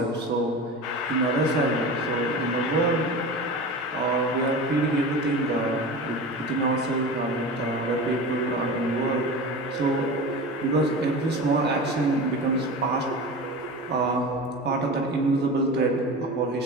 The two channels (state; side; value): normal; both; correlation 0.30